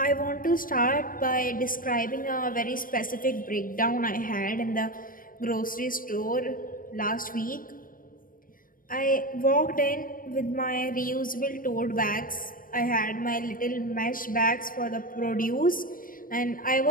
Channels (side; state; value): right; late; 0.40 ms